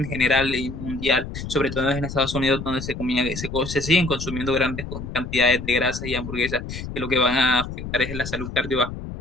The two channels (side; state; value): left; noise; rumble, 8 dB below the sound